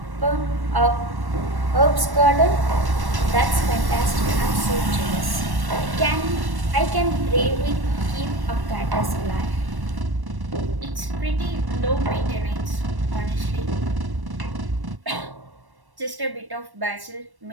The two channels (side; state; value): left; late; 1.1 ms